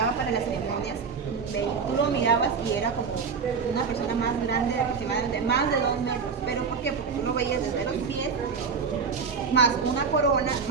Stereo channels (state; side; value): quieter; left; 5.6 dB